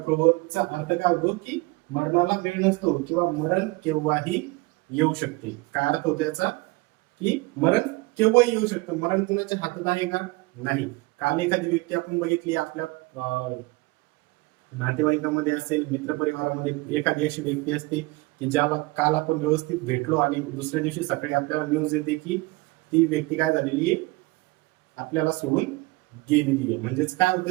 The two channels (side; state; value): left; quieter; 22.9 dB